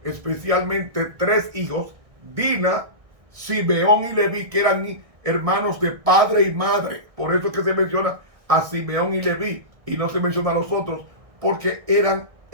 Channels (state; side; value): late; left; 1.6 ms